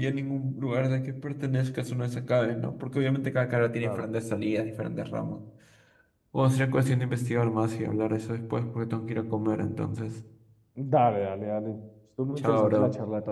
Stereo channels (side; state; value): both; identical; correlation 1.00